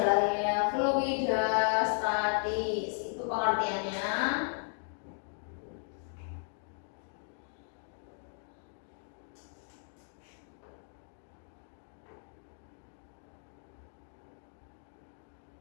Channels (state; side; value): silent; right; 54 dB below the other